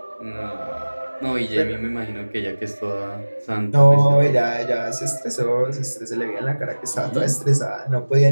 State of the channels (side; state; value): both; inverted; correlation -1.00